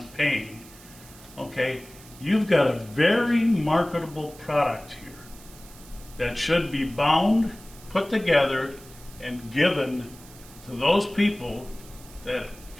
paying? Okay, you've got a very marketable product here that should be bound, put together, and given to those people that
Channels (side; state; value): right; noise; hiss, 21 dB below the sound